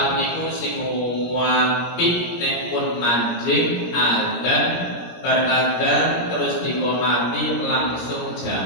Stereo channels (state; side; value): late; right; 17 ms